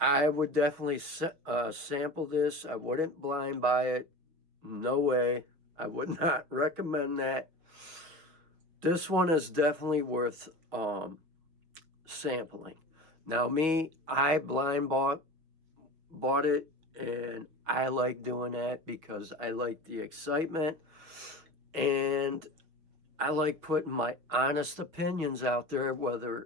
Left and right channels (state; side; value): late; left; 6.5 ms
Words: would definitely sample this. I wouldn't blind buy it. No way. I would not recommend that. This one is definitely worth sampling. Now me, I blind bought it, and I like doing that because I like the excitement, and I like putting my honest opinions out there,